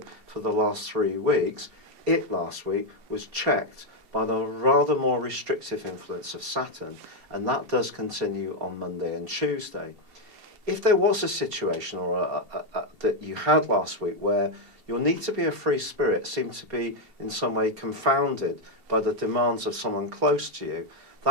for the last 3 weeks, it last week was checked by the rather more restrictive influence of Saturn, and that does continue on Monday and Tuesday. If there was a situation or that you had last week where your need to be a free spirit seemed to be in some way confounded by the demands of someone close to you,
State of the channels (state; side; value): late; left; 2.7 ms